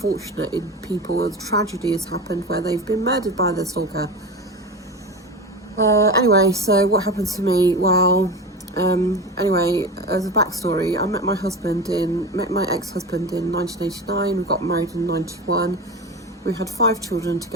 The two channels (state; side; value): normal; both; correlation 0.27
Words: people. A tragedy has happened where they've been murdered by their stalker. Anyway, so what happened to me? Well, anyway, as a backstory, I met my ex-husband in 1989. We got married in 91. We had 5 children